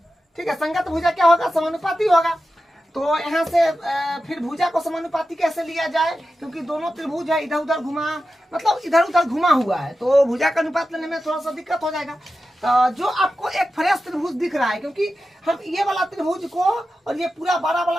ठीक है, संगत भुजा क्या होगा, समानुपाती होगा। तो यहाँ से फिर भुजा को समानुपाती कैसे लिया जाए, क्योंकि दोनों त्रिभुज है इधर उधर घुमा, मतलब इधर उधर घुमा हुआ है, तो भुजा का अनुपात लेने में थोड़ा सा दिक्कत हो जाएगा। तो जो आपको एक फ्रेश त्रिभुज दिख रहा है, क्योंकि हम ये वाला त्रिभुज को और ये पूरा बड़ा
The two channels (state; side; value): normal; both; correlation 0.92